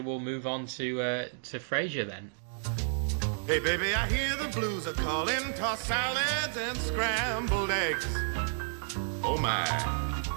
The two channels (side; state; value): left; silent; digital silence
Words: we'll move on to Frasier then. Hey baby, I hear the blues are calling, tossed salads and scrambled eggs. Oh my.